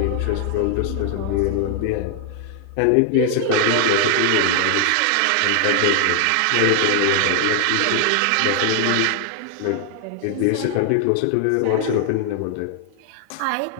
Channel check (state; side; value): different; both; correlation 0.00